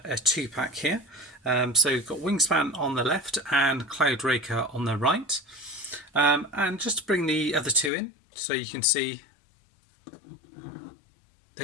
2-pack here. So we've got Wingspan on the left and Cloudraker on the right. And just to bring the other two in, so you can see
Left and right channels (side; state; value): right; drops out; at 7.9 s